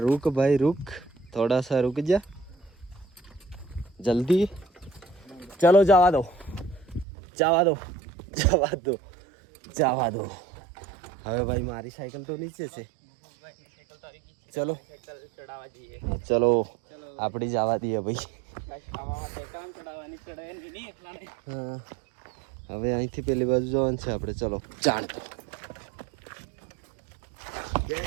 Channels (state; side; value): drops out; left; at 7.1 s